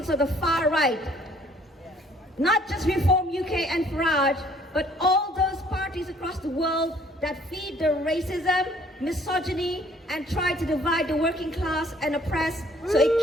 of the far right. Not just Reform UK and Farage, but all those parties across the world that feed the racism, misogyny, and try to divide the working class and oppress so it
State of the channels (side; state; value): both; normal; correlation 0.60